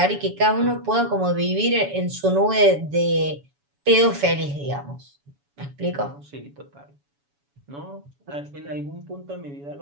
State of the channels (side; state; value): left; late; 7.1 ms